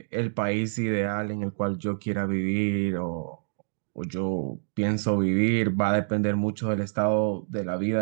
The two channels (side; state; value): left; silent; digital silence